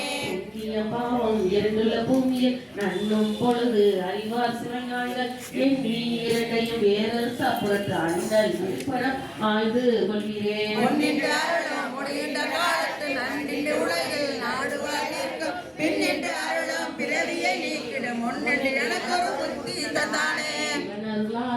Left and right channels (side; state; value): both; identical; correlation 1.00